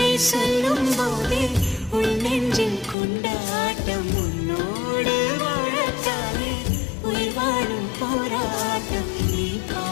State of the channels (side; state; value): right; drops out; at 3.0 s